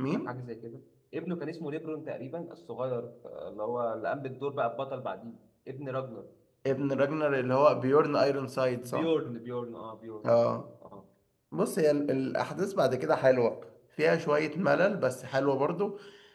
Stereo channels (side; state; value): both; identical; correlation 1.00